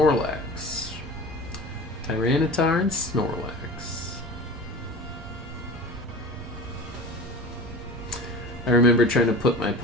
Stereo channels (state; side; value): normal; both; correlation 0.35